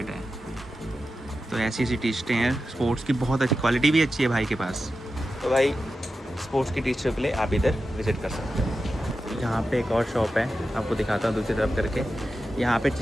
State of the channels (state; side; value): normal; both; correlation 0.91